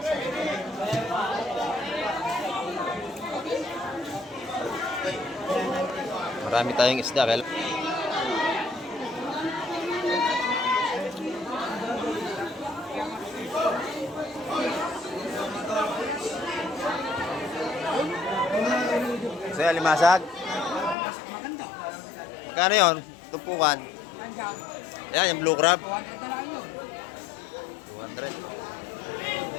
Marami tayong isda. Kaya... So, yung alimasag. Magkano yun? Tumpukan. Yan, yung blue crab. 200.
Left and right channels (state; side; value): drops out; right; at 21.0 s